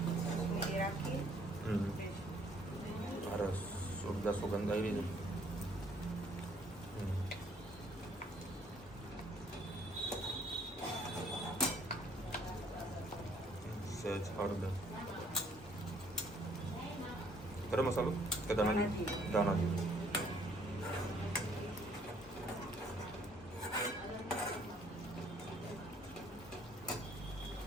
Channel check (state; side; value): normal; both; correlation 0.63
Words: અરે સુગંધ સુગંધ આવી છે. સહેજ હળદર. ગરમ મસાલો કે દાણા દાણા જેવું?